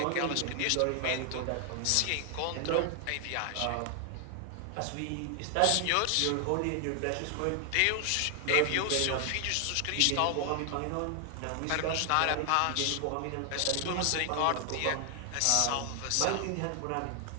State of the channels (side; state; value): both; different; correlation 0.00